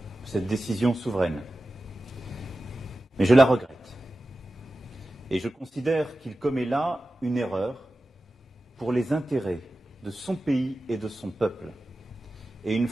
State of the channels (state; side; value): normal; both; correlation 0.94